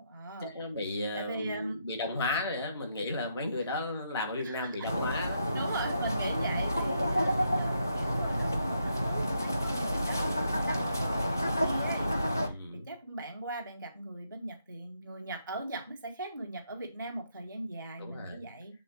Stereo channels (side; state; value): both; inverted; correlation -0.78